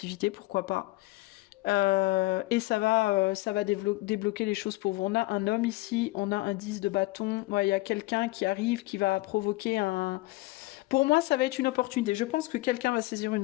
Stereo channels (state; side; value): quieter; right; 20.4 dB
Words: pourquoi pas. Et ça va débloquer les choses pour vous. On a un homme ici, on a un 10 de bâton. Ouais, il y a quelqu'un qui arrive, qui va provoquer un... Pour moi, ça va être une opportunité. Je pense que quelqu'un va saisir